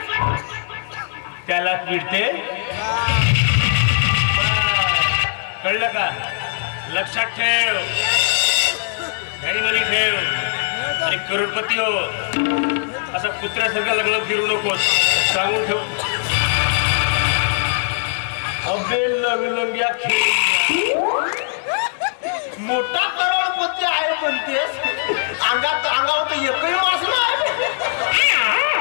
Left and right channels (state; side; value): silent; right; digital silence